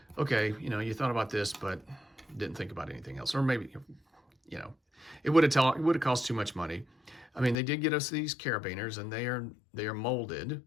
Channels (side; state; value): right; drops out; at 7.6 s